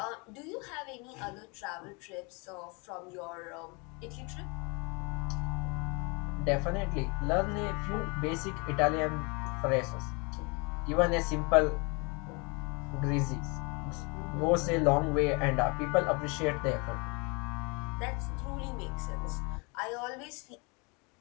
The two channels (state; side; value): quieter; right; 30.3 dB